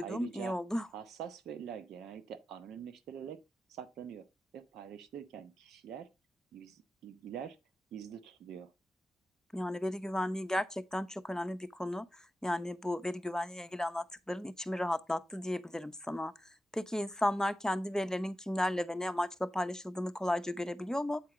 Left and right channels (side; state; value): both; normal; correlation 0.92